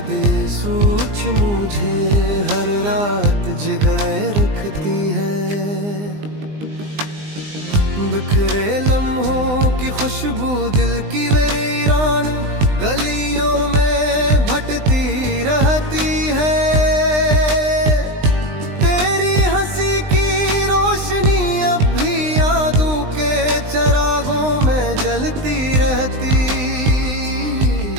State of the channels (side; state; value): left; late; 20 ms